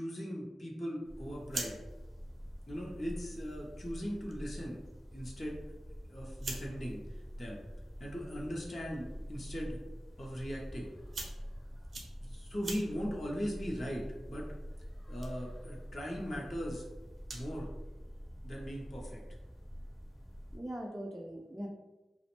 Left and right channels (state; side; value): normal; both; correlation 0.95